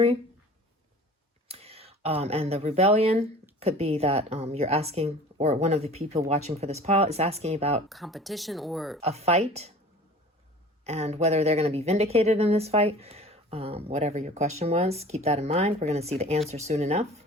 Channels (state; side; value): normal; both; correlation 0.44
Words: And the rebellion could be that you're asking, or one of the people watching for this pile is asking about competition or a fight and whether they're going to be vindicated in this fight. Whatever your question was, keep that in mind. We're going to see the answer soon enough.